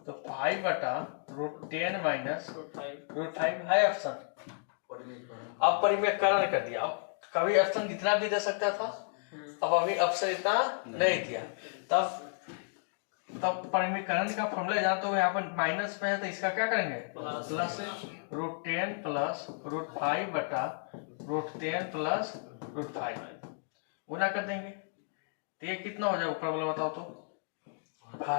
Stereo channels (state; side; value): silent; right; digital silence